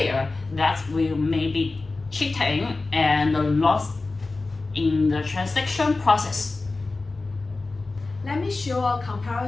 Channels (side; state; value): right; quieter; 3.5 dB